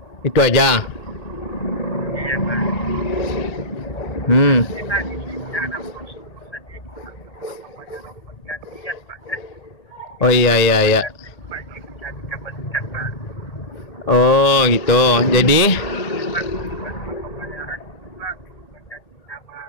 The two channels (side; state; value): right; late; 1.8 ms